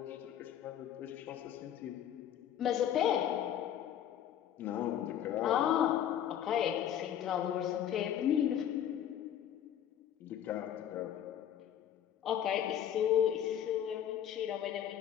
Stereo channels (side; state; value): right; quieter; 10.2 dB